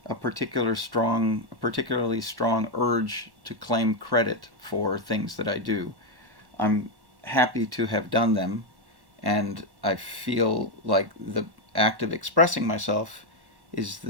a particularly strong urge to claim credit for things that I do. I'm happy to have done them, and I feel like the act of expressing myself is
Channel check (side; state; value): left; late; 1.1 ms